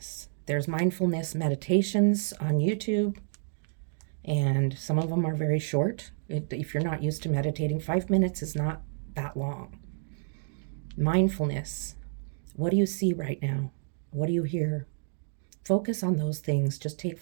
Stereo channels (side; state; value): left; silent; digital silence